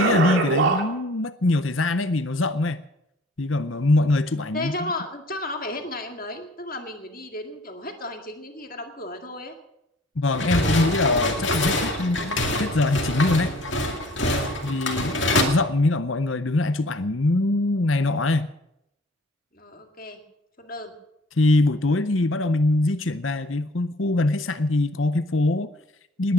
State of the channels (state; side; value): normal; both; correlation 0.54